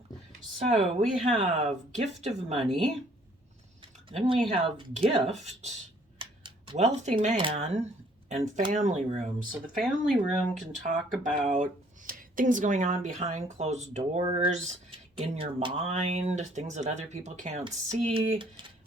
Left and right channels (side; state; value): both; normal; correlation 0.61